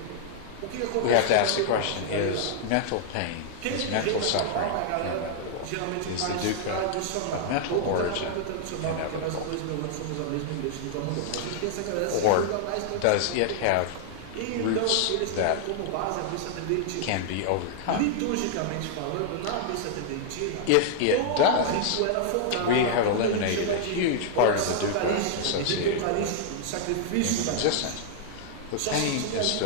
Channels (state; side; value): different; both; correlation -0.01